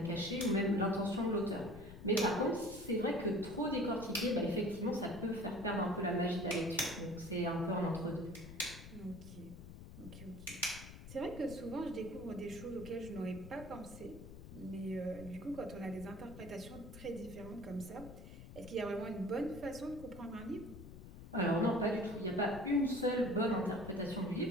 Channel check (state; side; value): noise; left; rumble, 14 dB below the sound